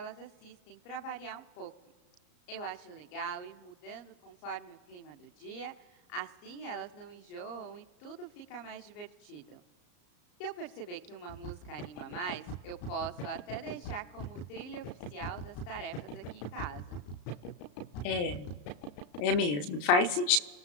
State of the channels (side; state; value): right; late; 34 ms